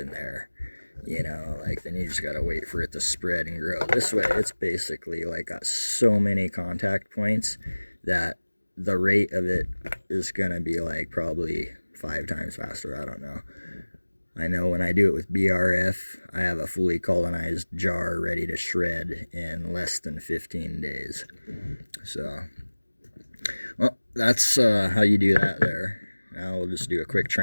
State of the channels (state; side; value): inverted; both; correlation -1.00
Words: there, you know, like, then you just gotta wait for it to spread and grow. This way, it's basically like got so many contact points that the rate of it is gonna be like probably 5 times faster. I don't know. I know when I do it with BRF, I have a fully colonized jar ready to shred in less than 15 days. So, well, that's how you do that there. Now we'll just do a quick